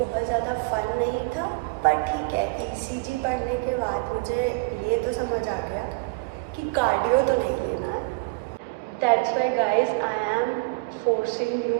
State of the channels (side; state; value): left; quieter; 29.0 dB